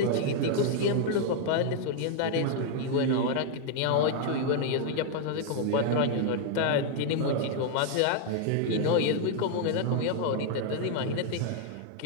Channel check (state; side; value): different; both; correlation 0.00